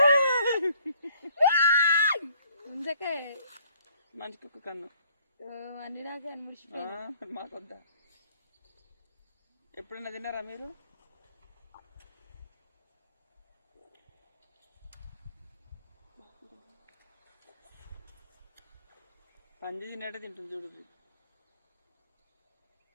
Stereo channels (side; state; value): both; inverted; correlation -0.62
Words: ముందకే మంచి కుక్క కన్ను అన్ని నాకే అనిపిస్తుంది. మాకొద్దా? ఎప్పుడైనా తిన్నారా మీరు? పంది తినేటే తింటుంది చూడు.